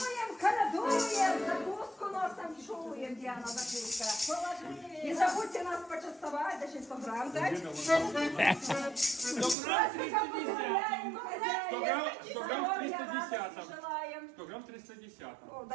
колядуем, закуску носом чуем, где она закуска. Не забудьте нас почастовать, даже 100 грамм дать. 100 грамм 310. 100 грамм 310. Желаем. 100 грамм 310. О,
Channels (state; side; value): drops out; left; at 9.6 s